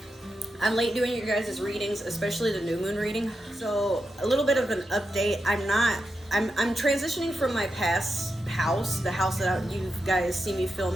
I'm late doing you guys' readings, especially the new moon reading. So a little bit of an update. I'm transitioning from my past house, the house that you guys see me film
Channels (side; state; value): both; normal; correlation 0.87